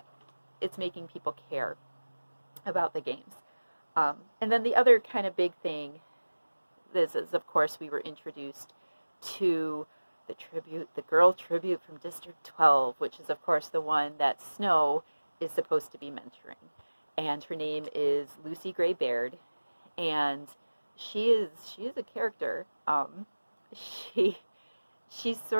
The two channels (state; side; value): inverted; both; correlation -1.00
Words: people care about the games. And then the other kind of big thing is, of course, we were introduced to the girl tribute from District 12, which is, of course, the one that Snow is supposed to be mentoring. And her name is Lucy Gray Baird, and she is a character. She